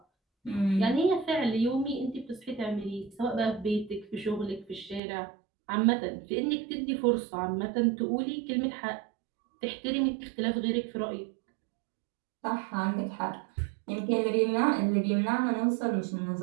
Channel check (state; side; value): drops out; left; at 5.0 s